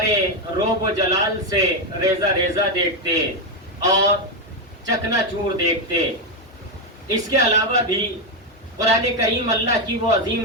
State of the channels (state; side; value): normal; both; correlation 0.06